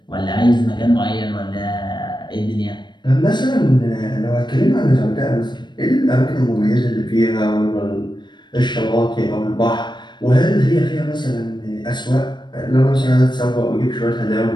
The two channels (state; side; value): late; right; 0.22 ms